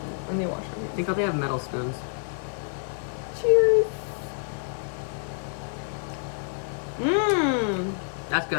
I'm gonna wash my hands. Think they have metal spoons. Cheers. Mmm. That's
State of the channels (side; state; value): right; silent; 56 dB below the other